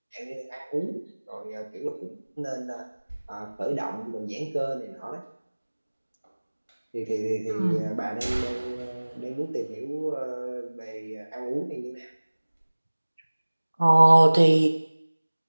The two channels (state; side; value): inverted; both; correlation -1.00